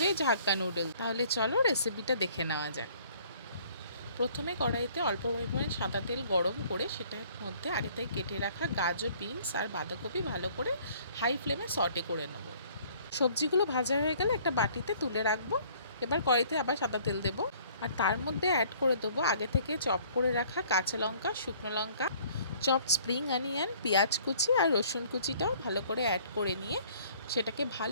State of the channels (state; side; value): inverted; both; correlation -0.57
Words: হাক্কা নুডল। তাহলে চলো রেসিপিটা দেখে নেওয়া যাক। প্রথমে কড়াইতে অল্প পরিমাণে সাদা তেল গরম করে সেটার মধ্যে আগে থেকে কেটে রাখা গাজর, বিনস আর বাঁধাকপি ভালো করে হাই ফ্লেমে সটে করে নেব। সবজিগুলো ভাজা হয়ে গেলে একটা বাটিতে তুলে রাখবো। এবার কড়াইতে আবার সাদা তেল দেবো আর তার মধ্যে অ্যাড করে দেবো আগে থেকে চপ করে রাখা কাঁচা লঙ্কা, শুকনো লঙ্কা, চপড স্প্রিং অনিয়ন, পেঁয়াজ কুচি আর রসুন কুচিটাও ভালো করে অ্যাড করে নিয়ে সেটাকে